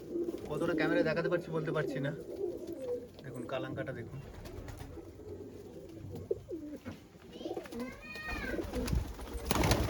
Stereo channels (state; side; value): identical; both; correlation 1.00